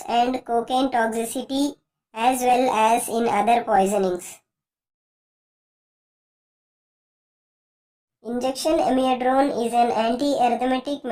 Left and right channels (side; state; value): both; identical; correlation 1.00